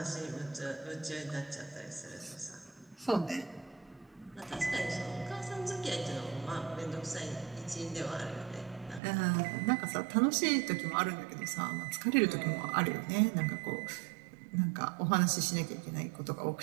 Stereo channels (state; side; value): drops out; left; at 9.0 s